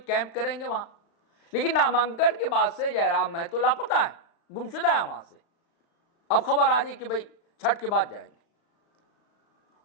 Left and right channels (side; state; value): right; late; 36 ms